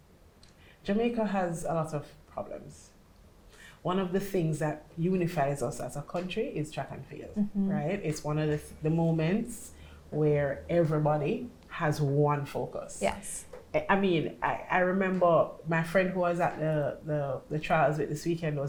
Jamaica has a lot of problems. One of the things that unifies us as a country is track and field, right? It's one of the moments where everybody has one focus. Yes. I mean, I remember my friend who was at the trials with this weekend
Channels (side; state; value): both; identical; correlation 1.00